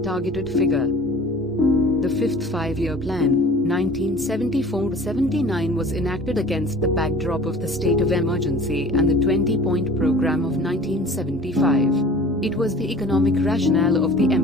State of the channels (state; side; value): normal; both; correlation 0.45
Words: figure. The fifth five-year plan, 1974-79, was enacted against the backdrop of the state of emergency and the 20-point program of 1975. It was the economic rationale of the